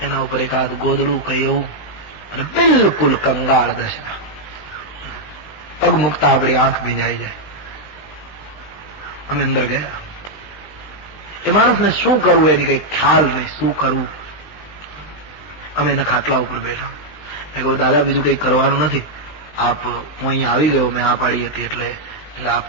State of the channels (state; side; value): late; right; 20 ms